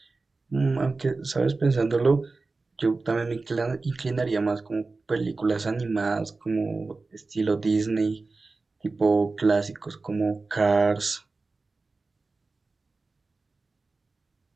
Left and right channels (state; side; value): quieter; left; 3.7 dB